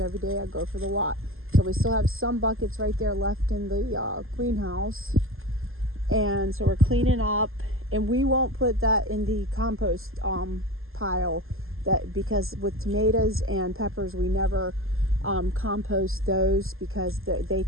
day I go for the walk. So we still have some buckets right there left in the greenhouse. And so we're cleaning up. And we won't put that in the compost pile, because with tomatoes and peppers, we never compost those because they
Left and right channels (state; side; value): late; left; 0.61 ms